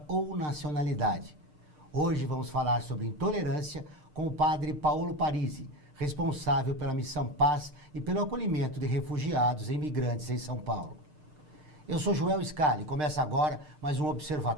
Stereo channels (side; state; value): left; late; 6.6 ms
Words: ou nacionalidade. Hoje vamos falar sobre intolerância com o padre Paulo Parisi, responsável pela Missão Paz e pelo acolhimento de refugiados e imigrantes em São Paulo. Eu sou Joel Scali e começa agora mais um